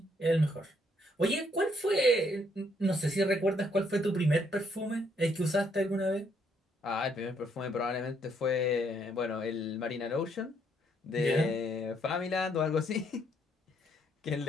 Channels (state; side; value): normal; both; correlation 0.71